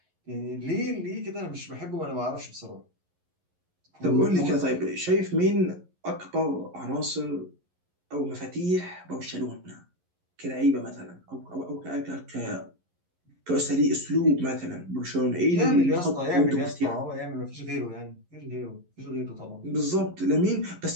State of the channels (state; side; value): late; left; 11 ms